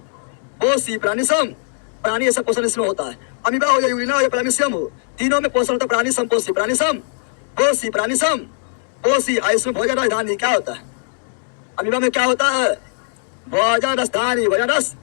प्राणी सम, प्राणी ऐसा पोषण इसमें होता है। अमीबा हो या यूग्लिना हो या पैरामीशियम हो, तीनों में पोषण होता है प्राणी समपोषी, प्राणी समपोषी, प्राणी समपोषी। इसमें भोजन राजधानी क्या होता है? अमीबा में क्या होता है? भोजन राजधानी, भोजन रस,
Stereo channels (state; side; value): silent; right; digital silence